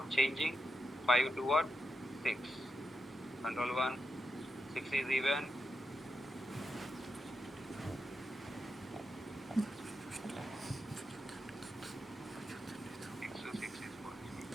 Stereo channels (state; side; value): normal; both; correlation 0.86